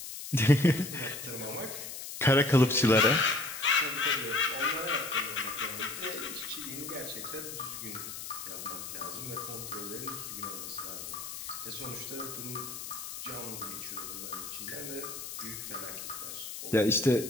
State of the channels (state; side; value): noise; left; hiss, 8 dB below the sound